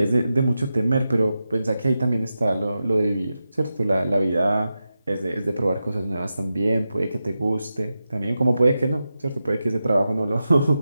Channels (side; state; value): both; inverted; correlation -0.90